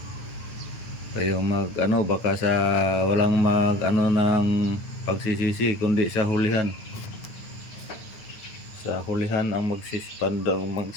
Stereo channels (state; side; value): late; right; 9.5 ms